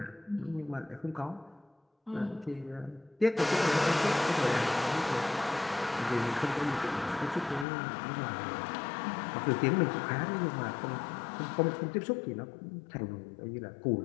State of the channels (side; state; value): right; drops out; at 7.7 s